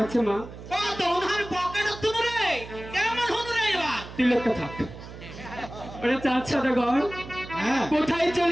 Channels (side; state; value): right; noise; hum, 14 dB below the sound